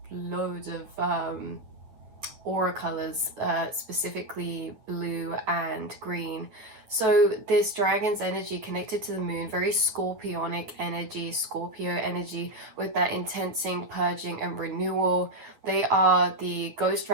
loads of aura colors, specifically blue and green. So this dragon's energy connected to the moon, very scorpionic energy, Scorpio energy, with that intensing, purging and renewal. They are the ghost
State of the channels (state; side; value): late; left; 9.7 ms